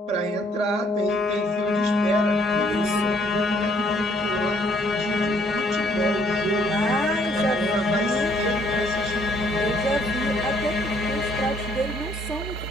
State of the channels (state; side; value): normal; both; correlation 0.65